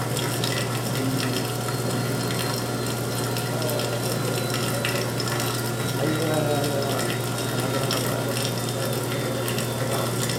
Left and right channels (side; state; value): both; identical; correlation 1.00